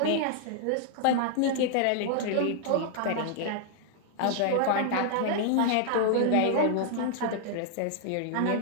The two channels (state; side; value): different; both; correlation 0.00